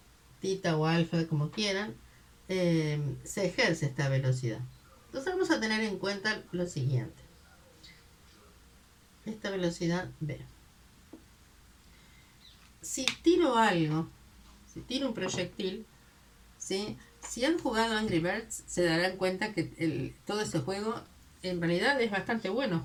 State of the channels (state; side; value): identical; both; correlation 1.00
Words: tita o alfa, como quieran, se ejerce esta velocidad. Entonces vamos a tener en cuenta lo siguiente. Esta velocidad B. Si tiro algo, si tiro un proyectil, ¿sí? Si han jugado Angry Birds, se darán cuenta que todo ese juego en realidad es bastante bueno